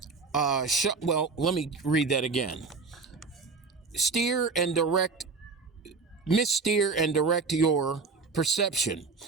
well, let me read that again. Missteer and direct your perception.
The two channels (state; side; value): quieter; left; 4.5 dB